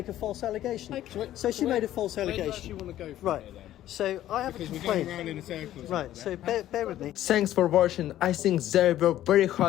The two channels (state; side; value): quieter; right; 13.0 dB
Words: a false allegation. Okay. So she made a false Where do you allegation. actually want to go from Right. here, then? So I have Because a we're going complaint. around in a circle. Right, so bear with me. Thanks for watching. I think there were very